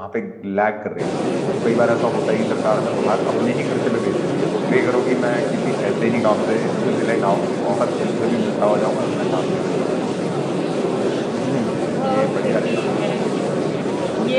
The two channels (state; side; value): identical; both; correlation 1.00